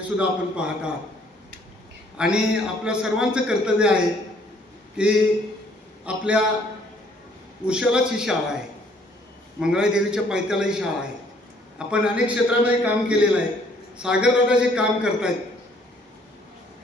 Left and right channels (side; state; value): both; normal; correlation 0.62